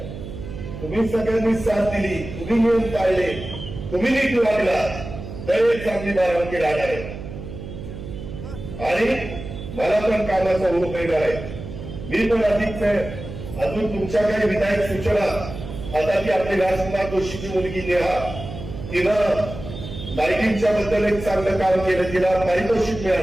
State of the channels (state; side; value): noise; right; hum, 10 dB below the sound